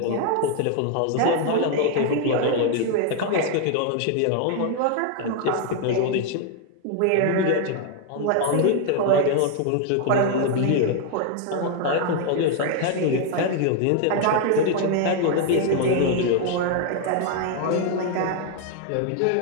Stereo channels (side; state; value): both; different; correlation 0.00